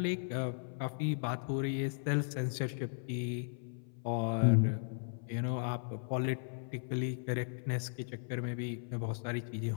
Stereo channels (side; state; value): right; silent; 53 dB below the other